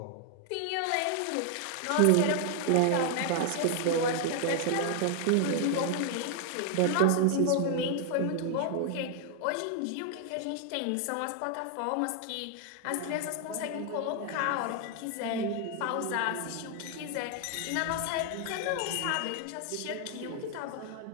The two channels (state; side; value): different; both; correlation 0.00